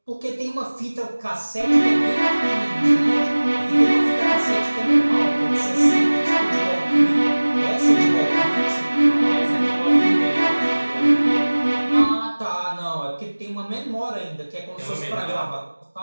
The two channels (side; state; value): both; inverted; correlation -1.00